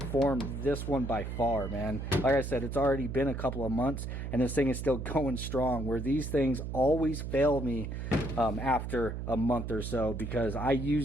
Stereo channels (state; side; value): noise; right; hum, 5 dB below the sound